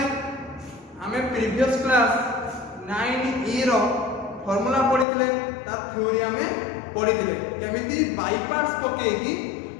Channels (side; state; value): right; drops out; at 5.1 s